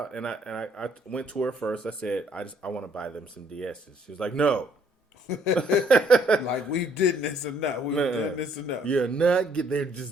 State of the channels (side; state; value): both; normal; correlation 0.65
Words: and I went to her first. I said, I want to buy them some DSs. She was like, no. Like, we did this enough. We've done this enough. You're not. They